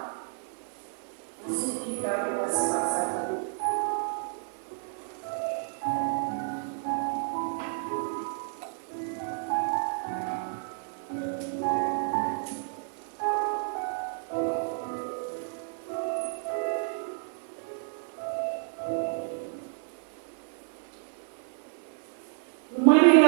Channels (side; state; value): left; silent; 57 dB below the other